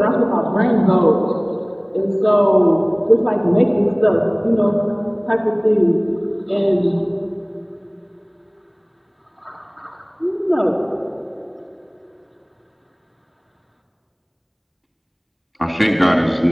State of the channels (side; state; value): both; identical; correlation 1.00